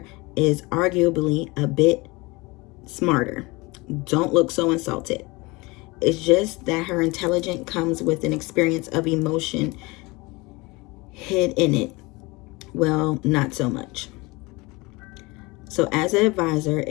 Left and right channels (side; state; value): right; quieter; 24.2 dB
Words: is arguably a bit smarter. Don't look so insulted. It's just that her intelligence comes with an experience of emotion hid in it. Well, not so much. So as an advisor,